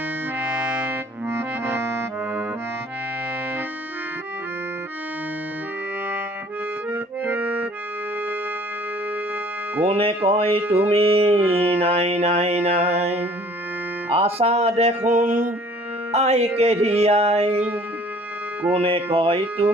কোনে কয় তুমি নাই নাই নাই, আছা দেখোন আইকে ধিয়াই। কোনে কয়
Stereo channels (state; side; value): normal; both; correlation 0.53